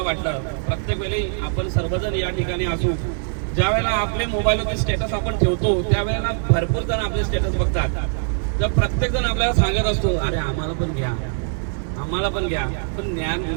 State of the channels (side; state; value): left; silent; digital silence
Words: वाटलं. प्रत्येक वेळी आपण सर्वजण या ठिकाणी असू. ज्या वेळेला आपले मोबाईलवरती स्टेटस आपण ठेवतो त्यावेळेला भरपूर जण आपले स्टेटस बघतात. तर प्रत्येक जण आपल्याला सांगत असतो अरे आम्हाला पण घ्या, आम्हाला पण घ्या. पण